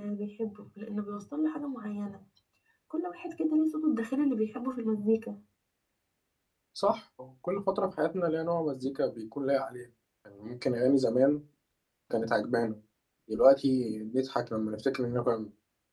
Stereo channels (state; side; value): identical; both; correlation 1.00